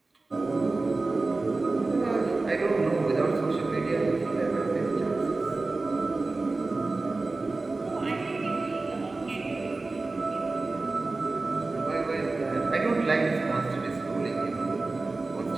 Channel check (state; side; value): quieter; left; 3.4 dB